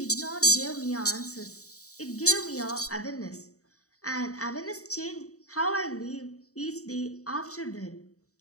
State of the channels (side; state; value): right; late; 0.65 ms